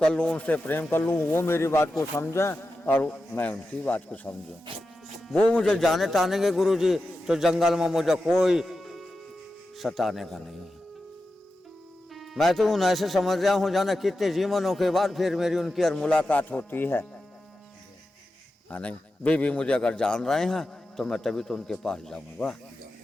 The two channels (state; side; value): normal; both; correlation 0.91